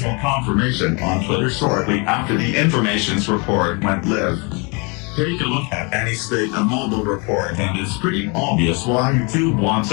confirmation on Twitter shortly after the information's report went live. Take a look at any state of mobile report and it's pretty obvious why YouTube wants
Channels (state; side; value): quieter; right; 31.5 dB